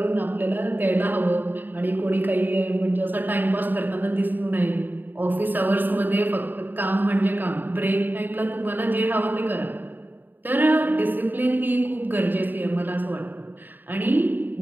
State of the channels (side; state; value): left; late; 0.091 ms